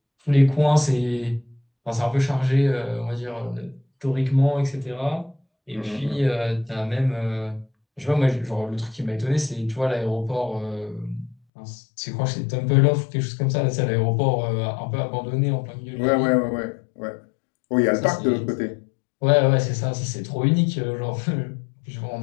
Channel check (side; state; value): right; drops out; at 11.4 s